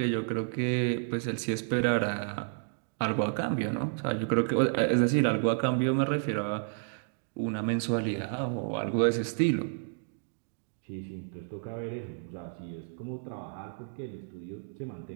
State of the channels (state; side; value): silent; left; digital silence